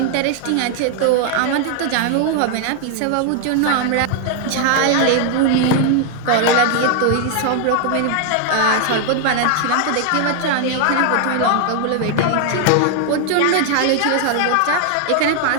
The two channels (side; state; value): both; different; correlation 0.00